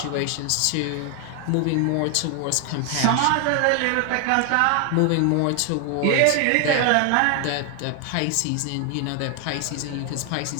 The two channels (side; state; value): both; different; correlation 0.00